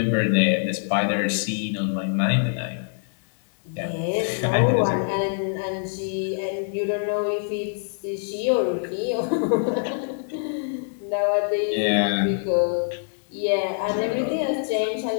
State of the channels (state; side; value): silent; right; digital silence